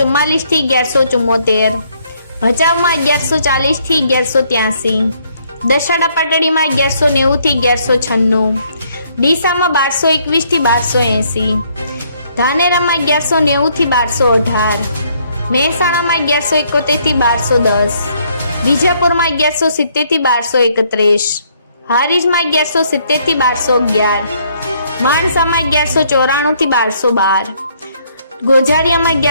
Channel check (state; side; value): inverted; both; correlation -0.68